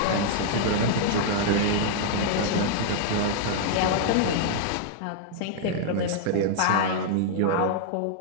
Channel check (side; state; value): both; different; correlation -0.01